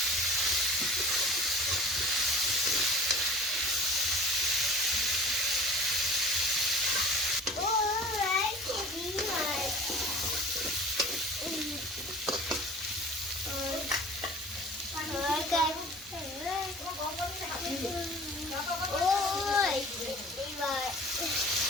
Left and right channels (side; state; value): both; normal; correlation 0.42